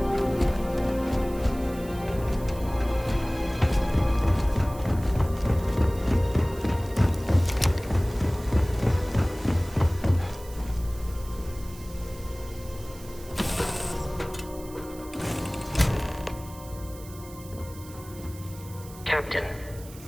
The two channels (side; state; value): right; noise; hiss, 19 dB below the sound